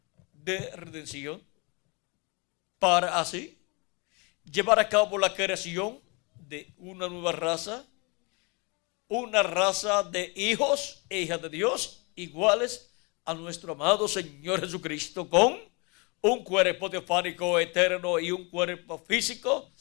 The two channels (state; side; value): quieter; right; 30.0 dB